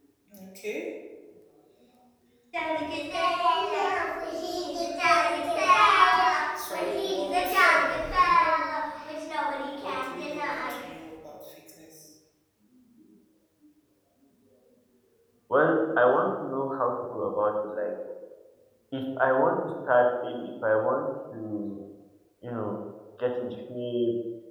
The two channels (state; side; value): identical; both; correlation 1.00